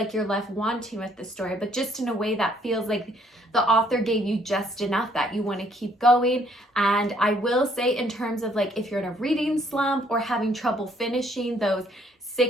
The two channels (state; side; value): normal; both; correlation 0.66